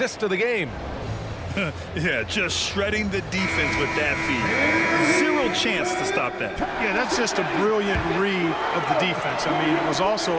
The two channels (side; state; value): both; identical; correlation 1.00